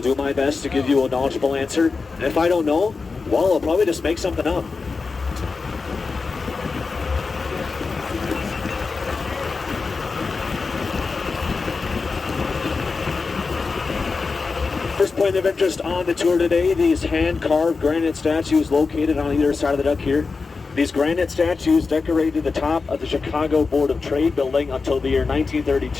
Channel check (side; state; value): right; quieter; 4.4 dB